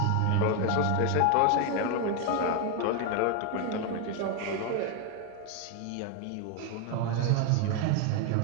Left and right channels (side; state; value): both; different; correlation 0.01